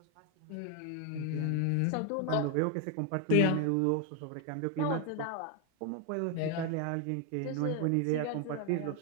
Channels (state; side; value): different; both; correlation 0.01